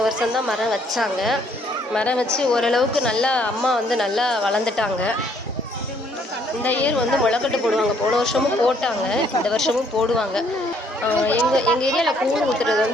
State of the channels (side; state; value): both; normal; correlation 0.66